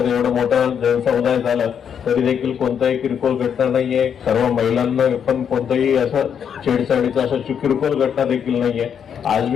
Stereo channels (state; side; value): quieter; right; 7.9 dB